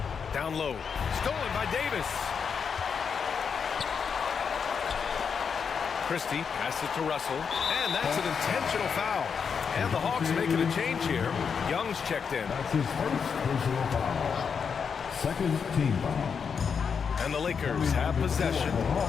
Down low. Stolen by Davis. Christie passes it to Russell. And that's an intentional foul. And the Hawks making a change here. Young's checked in. That's his first personal foul. Second team foul. And the Lakers have possession.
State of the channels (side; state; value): right; quieter; 6.4 dB